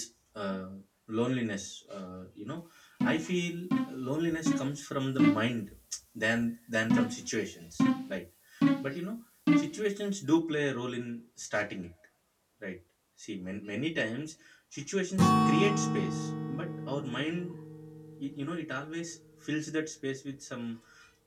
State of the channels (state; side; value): identical; both; correlation 1.00